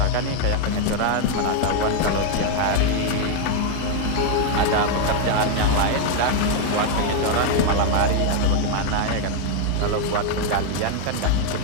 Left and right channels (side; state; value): both; different; correlation 0.01